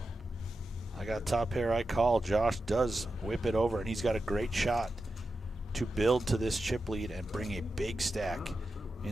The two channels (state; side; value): normal; both; correlation 0.90